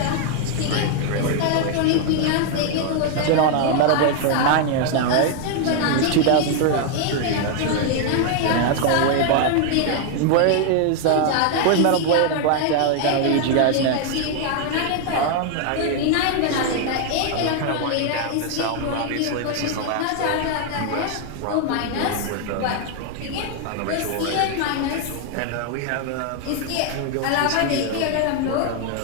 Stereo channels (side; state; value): both; different; correlation 0.00